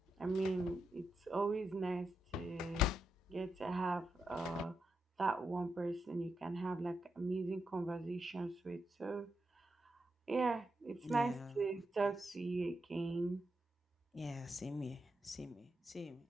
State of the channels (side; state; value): both; normal; correlation 0.85